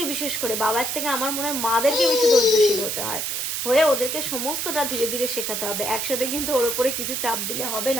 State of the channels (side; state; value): right; noise; hiss, 2 dB below the sound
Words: বিশেষ করে বাবার থেকে আমার মনে হয় মাদেরকে বেশি ধৈর্যশীল হতে হয়, হয়ে ওদেরকে সমস্তটা ধীরে ধীরে শেখাতে হবে। একসাথে কিন্তু ওর উপরে কিছু চাপ দিলে হবে